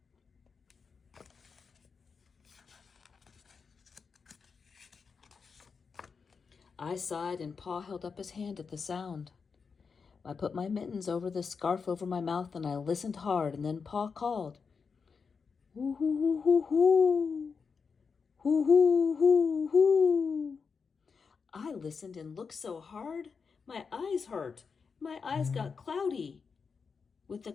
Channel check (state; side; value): quieter; right; 5.5 dB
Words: I sighed, and Pa held up his hand at the sound. I put my mittens over the scarf over my mouth, and I listened hard, and then Pa called, "Hoo, hoo, hoo, hoo, hoo. Hoo, hoo, hoo, hoo." I listened and looked so hard, my eyes hurt. My eyes got cloudy with the